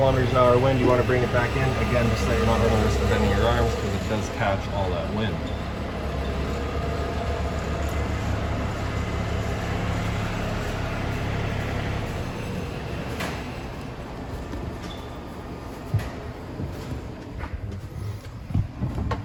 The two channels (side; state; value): both; identical; correlation 1.00